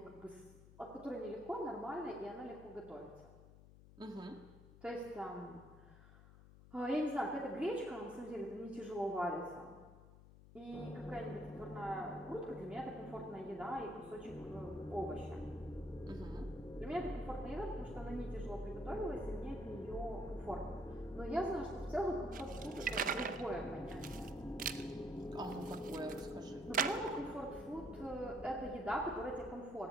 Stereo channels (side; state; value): left; noise; hum, 18 dB below the sound